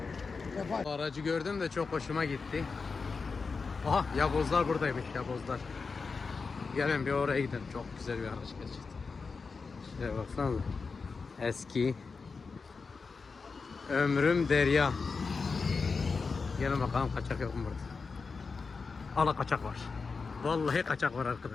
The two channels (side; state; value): right; quieter; 4.7 dB